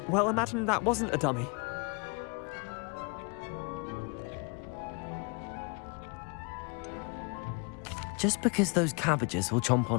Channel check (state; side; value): quieter; right; 33.0 dB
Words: well, imagine that wasn't a dummy. just because those cabbages will chomp